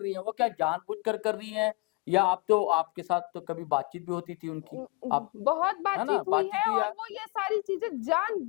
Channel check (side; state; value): right; quieter; 26.2 dB